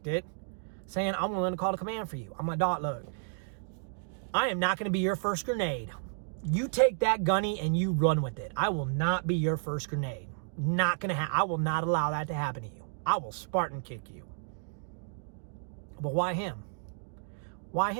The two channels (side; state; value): left; silent; digital silence